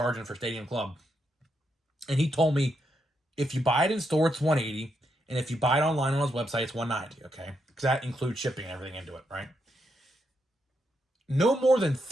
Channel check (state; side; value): normal; both; correlation 0.81